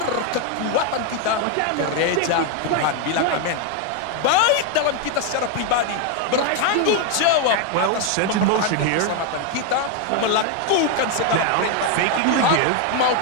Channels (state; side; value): different; both; correlation 0.01